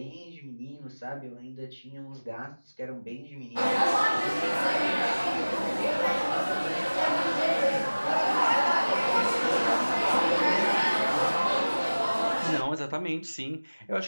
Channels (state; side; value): inverted; both; correlation -1.00